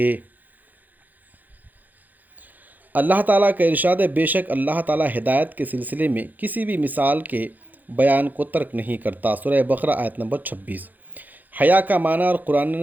اللہ تعالیٰ کا ارشاد ہے، بے شک اللہ تعالیٰ ہدایت کے سلسلے میں کسی بھی مثال کے بیان کو ترک نہیں کرتا۔ سورہ بقرہ آیت نمبر 26۔ حیا کا معنی اور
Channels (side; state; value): left; late; 0.084 ms